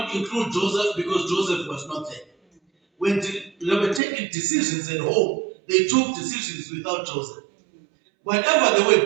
include Joseph because Joseph was not there. When they were taking decisions at home, they took decisions without Joseph. Whatever they were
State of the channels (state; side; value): drops out; left; at 4.0 s